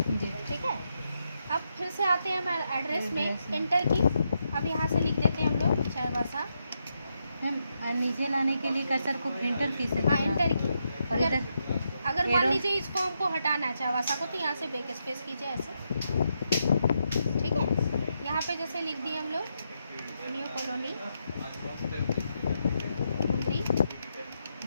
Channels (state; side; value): inverted; both; correlation -0.82